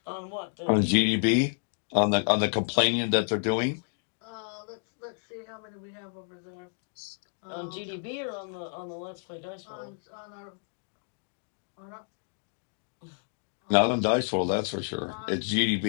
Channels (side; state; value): right; silent; digital silence